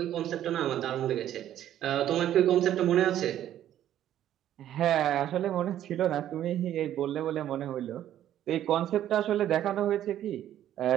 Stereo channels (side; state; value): left; quieter; 11.7 dB